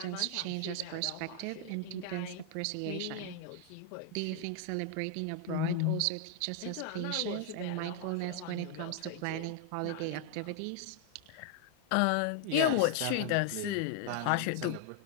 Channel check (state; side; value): different; both; correlation 0.00